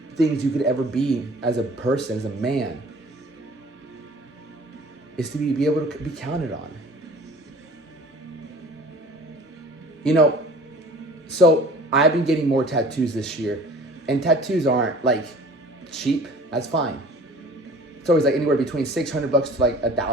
things you could ever be as a person, as a man, is to be able to be counted on. You know, so I've been getting more tattoos this year, and tattoos aren't like cheap. That's fine. It's always like anywhere between $600 to like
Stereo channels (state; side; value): normal; both; correlation 0.46